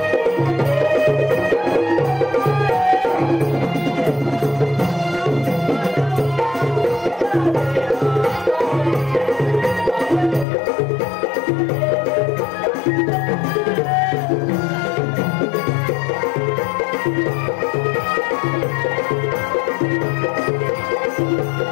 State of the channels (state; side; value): drops out; right; at 10.5 s